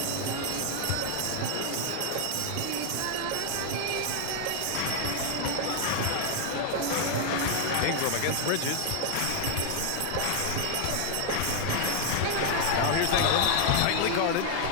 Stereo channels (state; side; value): different; both; correlation 0.00